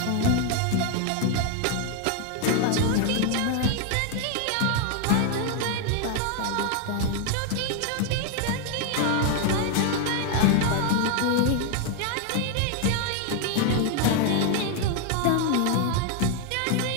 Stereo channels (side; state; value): both; different; correlation 0.00